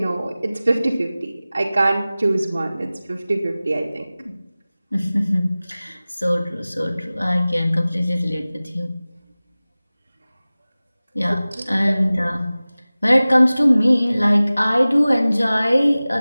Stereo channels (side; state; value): both; inverted; correlation -0.98